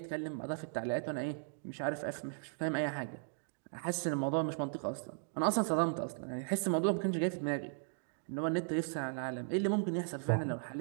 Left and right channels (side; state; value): left; silent; digital silence